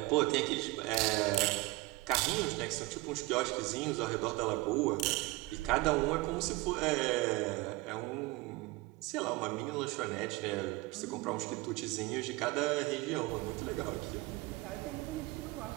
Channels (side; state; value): left; quieter; 21.5 dB